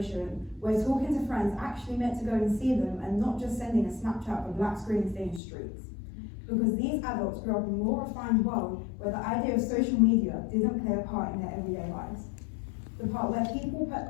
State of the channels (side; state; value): right; drops out; at 5.4 s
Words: where talking to friends actually meant to go and see them and not just sending a Snapchat with black screen stained streets. Because these adults grew up in a more refined world where the idea of social media didn't play a part in their everyday lives. The part where people